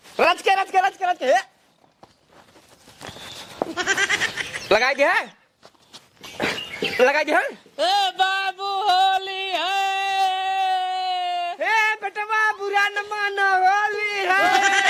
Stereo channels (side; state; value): both; identical; correlation 1.00